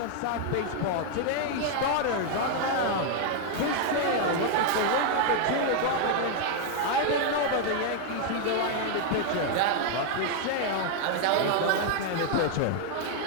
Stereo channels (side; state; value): both; different; correlation 0.00